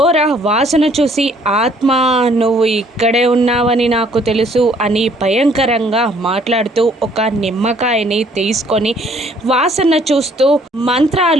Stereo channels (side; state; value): both; normal; correlation 0.61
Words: వాసన చూసి ఆత్మ నువ్వు ఇక్కడే ఉన్నావని నాకు తెలుసు అని భయంకరంగా మాట్లాడుతూ ఒక నిమ్మకాయని తీసుకొని వాసన చూస్తూ